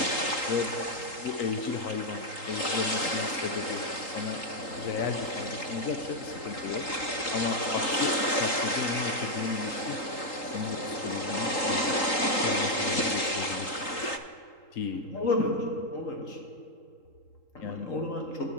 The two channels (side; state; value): right; late; 3.8 ms